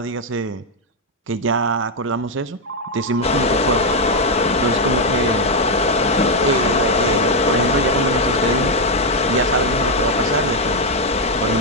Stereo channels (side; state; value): both; normal; correlation 0.02